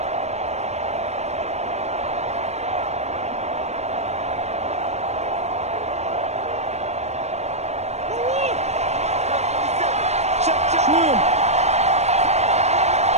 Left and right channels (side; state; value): left; late; 0.32 ms